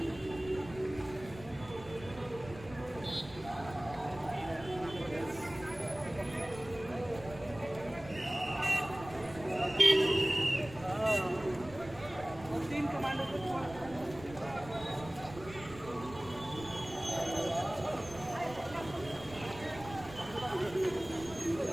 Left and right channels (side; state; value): right; noise; rumble, 16 dB below the sound